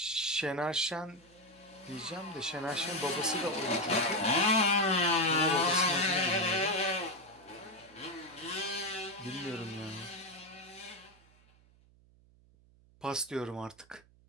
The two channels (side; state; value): right; noise; hum, 28 dB below the sound